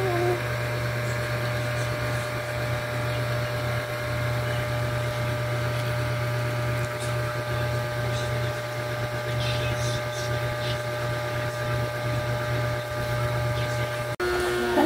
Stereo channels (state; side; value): identical; both; correlation 1.00